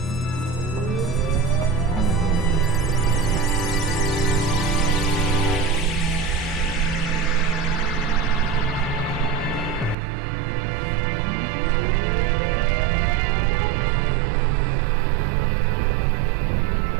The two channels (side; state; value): left; drops out; at 10.0 s